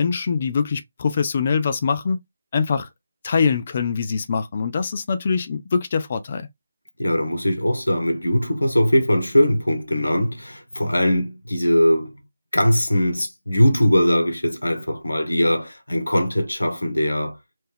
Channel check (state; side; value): inverted; both; correlation -0.93